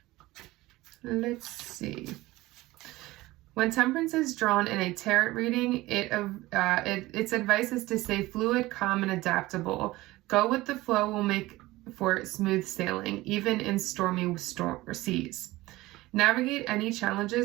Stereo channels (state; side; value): quieter; left; 18.7 dB